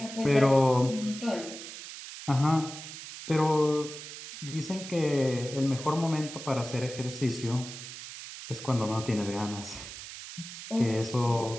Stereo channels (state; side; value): noise; right; hiss, 11 dB below the sound